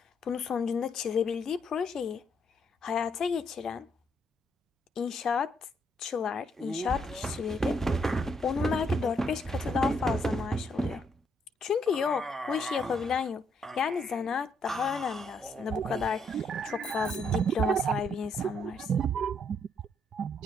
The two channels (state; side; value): normal; both; correlation 0.73